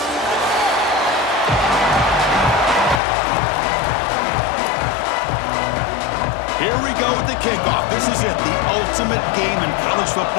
Here we go with the kickoff. This is it, the ultimate game in college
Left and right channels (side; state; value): right; drops out; at 3.0 s